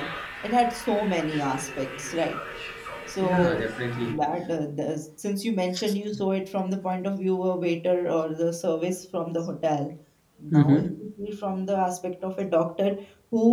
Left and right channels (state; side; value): identical; both; correlation 1.00